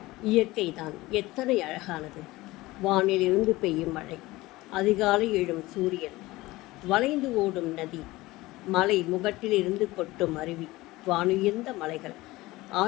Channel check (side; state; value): right; quieter; 19.4 dB